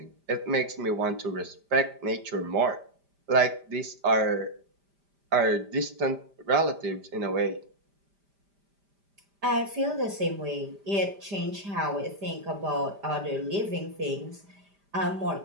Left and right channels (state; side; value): late; left; 5.0 ms